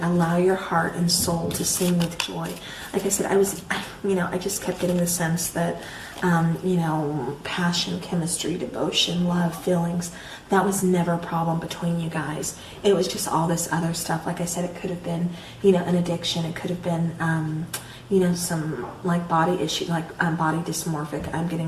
Allow your heart and soul to sing with joy. Like I said, I just kept getting the sense that, passion, chemistry, devotion, love, feelings, that was never a problem between you guys. It was just all this other stuff. Like I said, it could have been, an addiction. It could have been, some like body issue, like body dysmorphic I'm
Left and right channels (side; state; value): both; identical; correlation 1.00